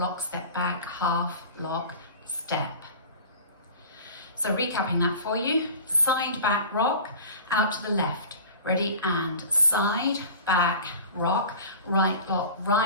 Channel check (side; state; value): both; inverted; correlation -0.38